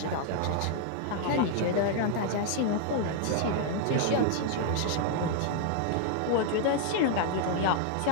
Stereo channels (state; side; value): different; both; correlation 0.00